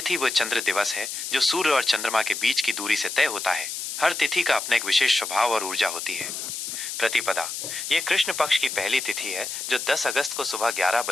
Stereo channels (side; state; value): left; noise; hiss, 6 dB below the sound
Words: वो चंद्र दिवस है जो सूर्य और चंद्रमा के बीच की दूरी से तय होता है। हर तिथि का अपना एक विशेष स्वभाव और ऊर्जा होती है। प्रतिपदा ये कृष्ण पक्ष की पहली तिथि है जो 10 अगस्त को सुबह